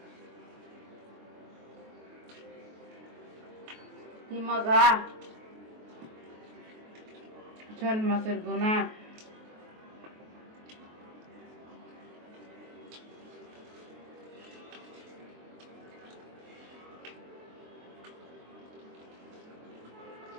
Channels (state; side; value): late; left; 23 ms